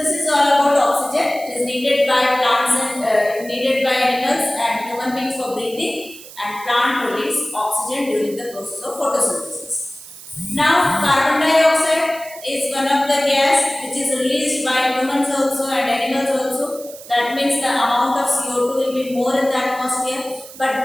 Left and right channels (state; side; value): noise; right; hiss, 17 dB below the sound